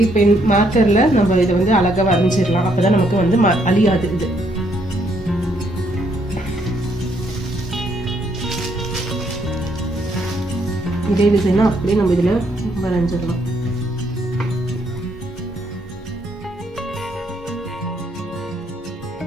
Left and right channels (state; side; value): normal; both; correlation 0.72